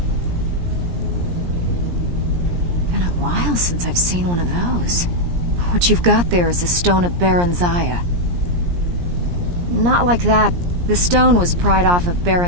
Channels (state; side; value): late; left; 17 ms